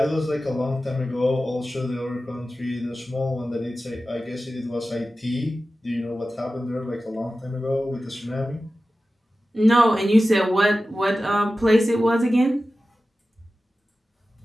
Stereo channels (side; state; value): both; normal; correlation 0.94